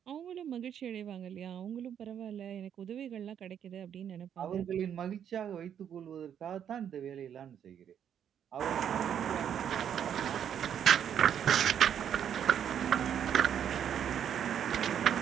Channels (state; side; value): quieter; left; 9.0 dB